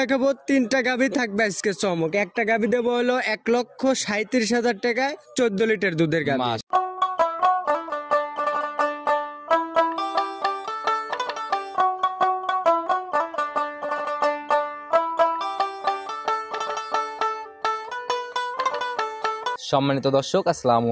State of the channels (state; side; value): identical; both; correlation 1.00